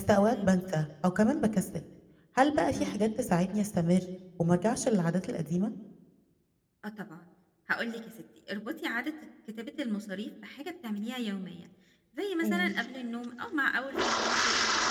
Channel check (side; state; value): both; identical; correlation 1.00